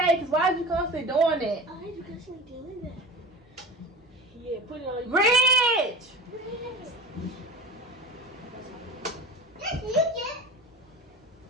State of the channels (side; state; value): both; normal; correlation 0.34